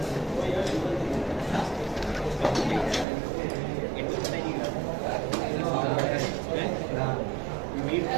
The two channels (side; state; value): left; drops out; at 3.1 s